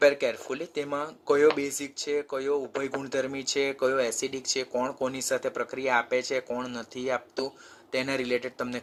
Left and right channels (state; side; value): identical; both; correlation 1.00